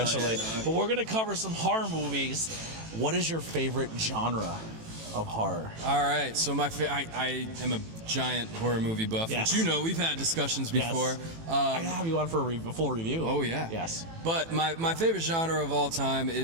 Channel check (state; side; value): late; left; 18 ms